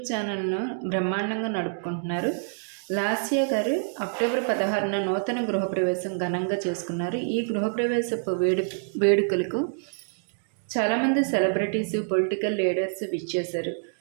ఛానల్ను బ్రహ్మాండంగా నడుపుకుంటున్నారు. లాస్య గారు అక్టోబర్ 16న నూతన గృహప్రవేశం ఘనంగా చేసుకున్నారు. ఈ గృహప్రవేశపు వేడుకలకు చాలామంది సెలబ్రిటీసు, పొలిటికల్ లీడర్స్ విచ్చేశారు.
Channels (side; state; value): left; silent; digital silence